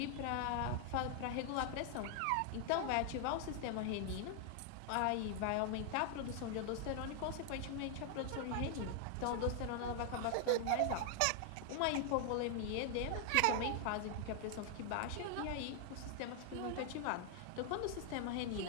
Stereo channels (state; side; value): different; both; correlation 0.00